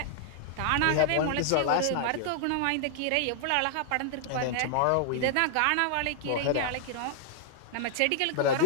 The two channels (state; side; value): different; both; correlation 0.00